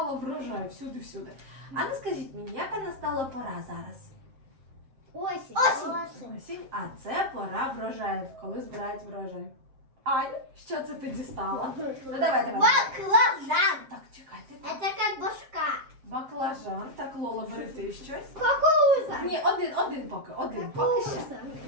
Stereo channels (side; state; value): left; late; 7.5 ms